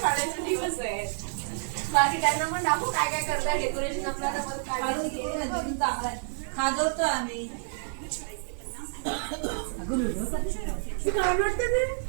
दिवस आहे. बाकी त्यांना पण दाखवू काय काय करताय डेकोरेशन. आपल्याला पण काय खाजवतो आम्ही.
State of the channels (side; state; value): left; silent; 59 dB below the other